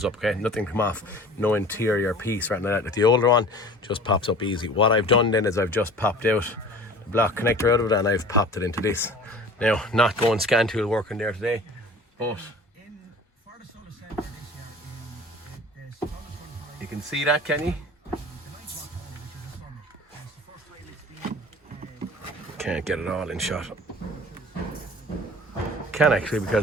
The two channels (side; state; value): both; normal; correlation 0.43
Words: up. Okay, nothing come off, no interior piece or anything like that. Like the older one just pops up easy. What I've done then is I've just popped out the block connector out of it and I've popped it into this. Now, not going scan tool working there today, but you can see that, can you? Can't get it all in shot. Can actually,